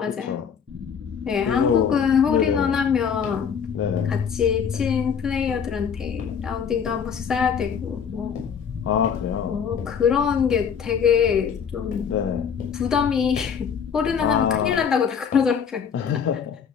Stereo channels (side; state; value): right; quieter; 7.1 dB